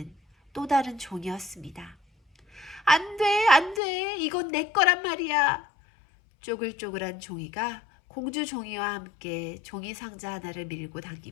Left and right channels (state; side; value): drops out; right; at 3.8 s